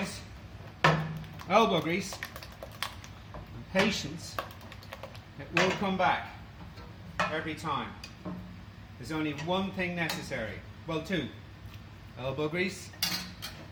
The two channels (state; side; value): identical; both; correlation 1.00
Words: elbow grease and patience, it will come back every time. There's only one thing necessary, well, two: elbow grease